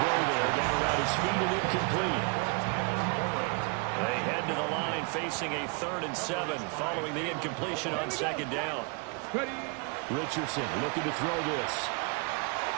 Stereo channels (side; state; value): left; quieter; 34.5 dB